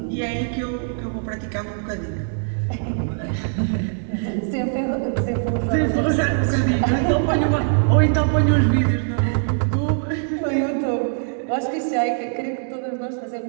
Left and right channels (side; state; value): left; silent; digital silence